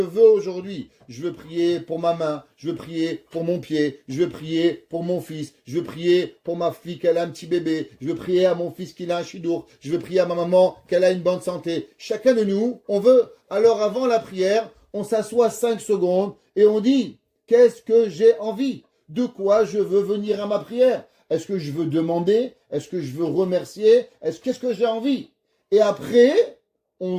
aujourd'hui? Je veux prier pour ma main, je veux prier pour mon pied, je veux prier pour mon fils, je veux prier pour ma fille qu'elle a un petit bébé, je veux prier à mon fils qu'il a un chidour, je veux prier à ma maman qu'elle a une bonne santé. Chacun de nous, on veut. Alors avant la prière, on s'assoit 5 secondes et on dit, qu'est-ce que j'ai envie? De quoi je veux venir à ma prière? Est-ce que je veux demander? Est-ce que je veux remercier? Qu'est-ce que j'ai envie? Et après, on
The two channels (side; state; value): both; identical; correlation 1.00